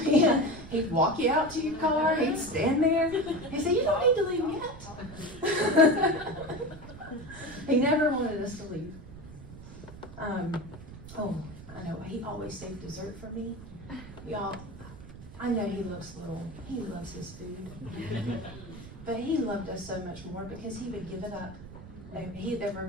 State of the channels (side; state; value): right; noise; rumble, 15 dB below the sound